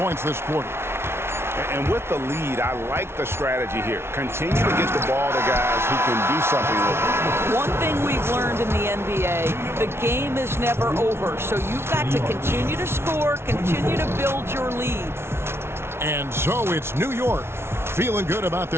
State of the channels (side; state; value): left; late; 0.12 ms